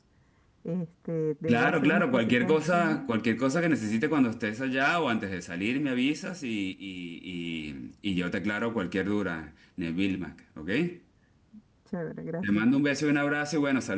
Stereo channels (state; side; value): identical; both; correlation 1.00